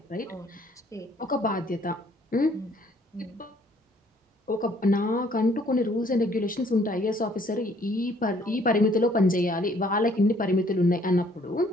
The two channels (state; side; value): normal; both; correlation 0.62